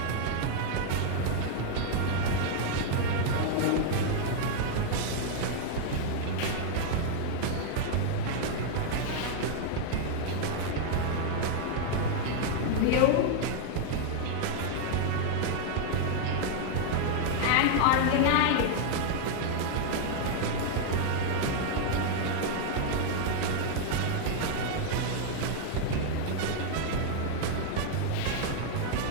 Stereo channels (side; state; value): both; different; correlation 0.00